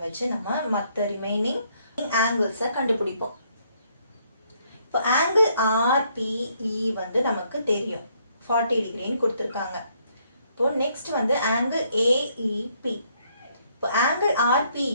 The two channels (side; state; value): both; inverted; correlation -0.70